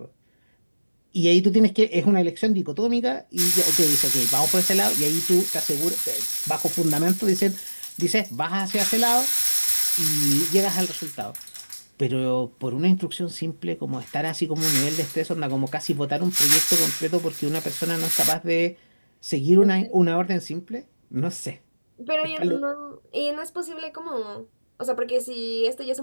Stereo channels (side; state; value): both; inverted; correlation -1.00